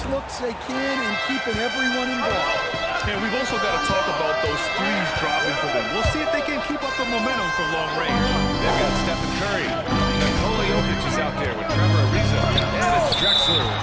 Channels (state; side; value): identical; both; correlation 1.00